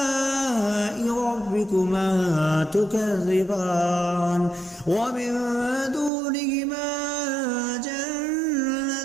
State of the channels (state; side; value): drops out; left; at 6.1 s